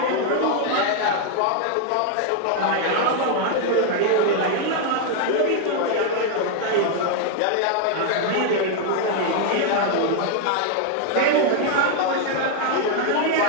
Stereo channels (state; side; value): different; both; correlation 0.00